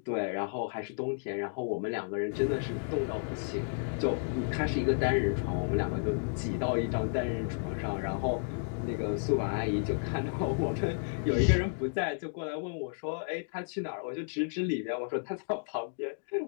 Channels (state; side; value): silent; right; digital silence